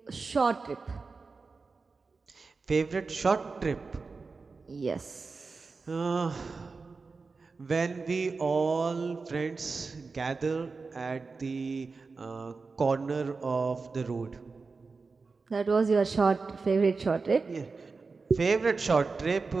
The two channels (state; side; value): quieter; left; 4.3 dB